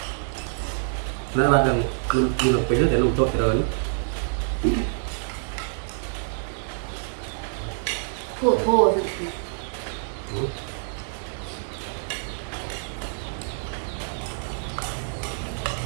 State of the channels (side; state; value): left; silent; 61 dB below the other